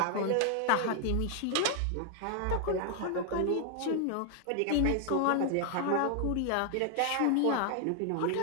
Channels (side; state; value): both; different; correlation 0.00